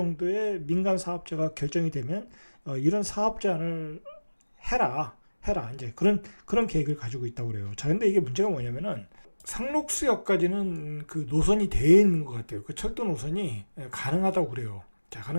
민간 사업자가 결정이 되면 이런 사업 제안을 해라 이제 그런 계획을 가지고 있다고 그래요. 자, 근데 이게 문제가 뭐냐면은 상록수역까지는 그 노선이 되어 있는 것 같아요. 그 철도 노선이 가능하다고 그래요. 자,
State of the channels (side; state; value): both; inverted; correlation -1.00